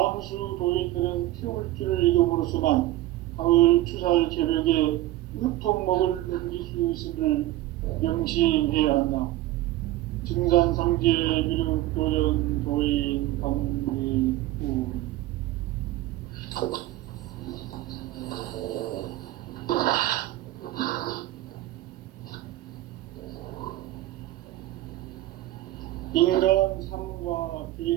도인들은 태울주를 읽음으로써만 가을 추살 개벽에 의통목을 넘길 수 있음을 명심해야 한다. 증산상제 미륵도전 도인 강대군.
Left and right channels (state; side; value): quieter; left; 15.8 dB